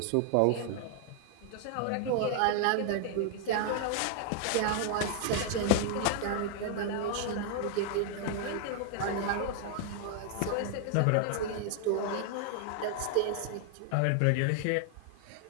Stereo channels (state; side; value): different; both; correlation 0.00